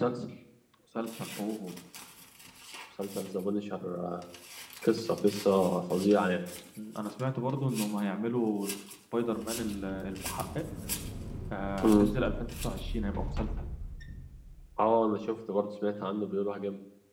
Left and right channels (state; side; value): identical; both; correlation 1.00